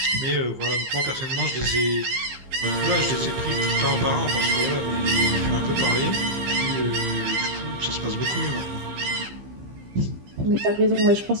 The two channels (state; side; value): late; left; 15 ms